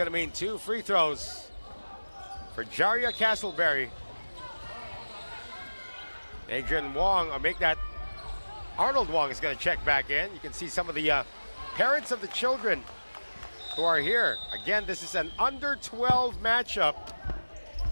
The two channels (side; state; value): both; inverted; correlation -1.00